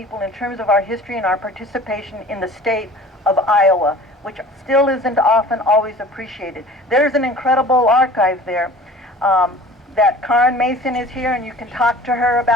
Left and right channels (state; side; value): normal; both; correlation 0.44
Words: in terms of our history and our participation in the state of Iowa, which still isn't often always appreciated. There's an incredible archive there. That Karen Mason is here, and you can talk to her